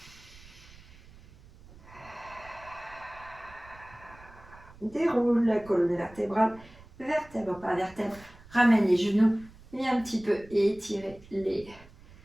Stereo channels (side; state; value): right; noise; rumble, 22 dB below the sound